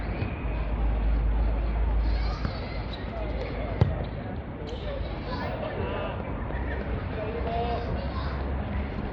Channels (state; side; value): identical; both; correlation 1.00